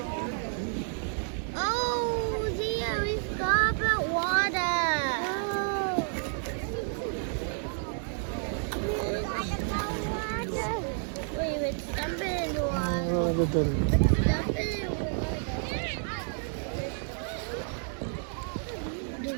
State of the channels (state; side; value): silent; left; 58 dB below the other